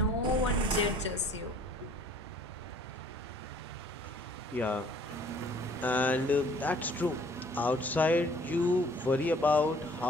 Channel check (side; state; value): both; normal; correlation 0.56